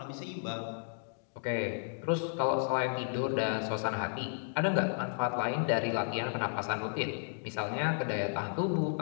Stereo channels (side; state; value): right; silent; digital silence